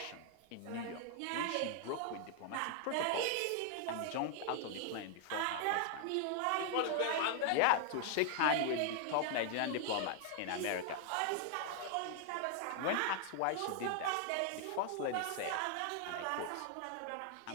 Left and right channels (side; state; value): both; different; correlation 0.00